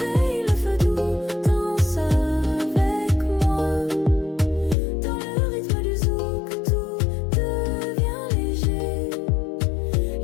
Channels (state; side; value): drops out; right; at 4.8 s